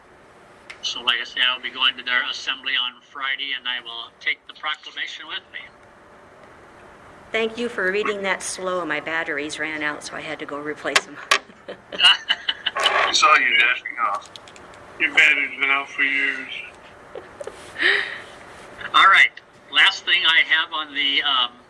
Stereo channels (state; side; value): identical; both; correlation 1.00